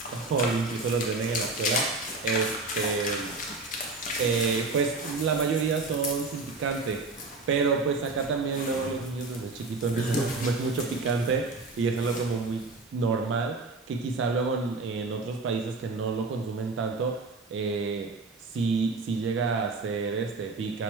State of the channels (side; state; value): left; quieter; 3.6 dB